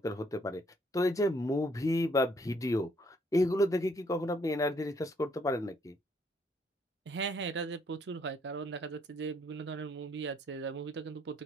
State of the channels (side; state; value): both; normal; correlation 0.68